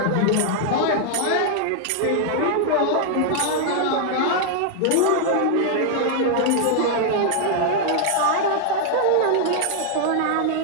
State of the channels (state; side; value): different; both; correlation 0.00